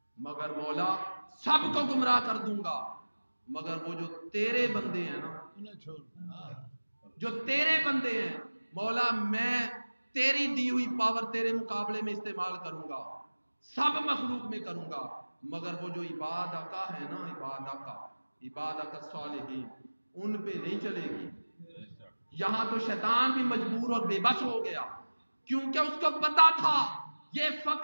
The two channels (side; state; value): both; inverted; correlation -1.00